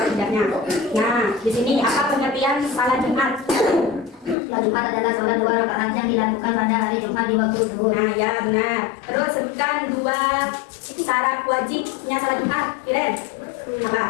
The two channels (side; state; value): right; drops out; at 4.4 s